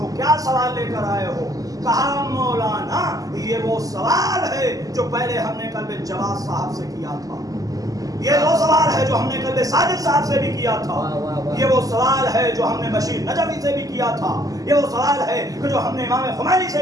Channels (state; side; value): late; left; 0.17 ms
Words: क्या सवाल लेकर आए हो? कहा मौलाना ये वो सवाल है जो पहले हमने कल्बे जवाद साहब से किया था, ये वो सवाल है जो हमने कल्बे साजिद साहब से भी किया था, ये वो सवाल है जो हमने बशीर नजवी से भी किया था, ये वो सवाल है कि जो हमने इमाम खुमैनी